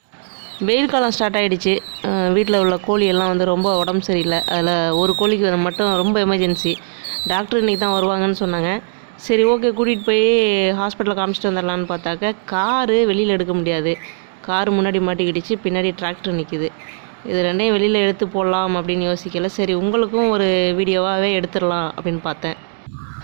வெயில் காலம் ஸ்டார்ட் ஆகிடுச்சு. வீட்டில் உள்ள கோழி எல்லாம் வந்து ரொம்ப உடம்பு சரியில்லை. அதில் ஒரு கோழிக்கு மட்டும் ரொம்ப எமர்ஜென்சி. டாக்டர் இன்றைக்கி தான் வருவாங்கன்னு சொன்னாங்க. சரி ஓகே, கூட்டிகிட்டு போய் ஹாஸ்பிட்டலில் காமிச்சிட்டு வந்துடலான்னு பார்த்தாக்க காரு வெளியில் எடுக்க முடியாது. காரு முன்னாடி மாட்டிக்கிடுச்சு, பின்னாடி டிராக்டர் நிற்கிது. இது ரெண்டையும் வெளியில் எடுத்து போடலாம் அப்படின்னு யோசிக்கல. சரி உங்களுக்கும் ஒரு வீடியோவாகவே எடுத்துடலாம் அப்படின்னு பார்த்தேன்.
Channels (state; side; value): silent; left; digital silence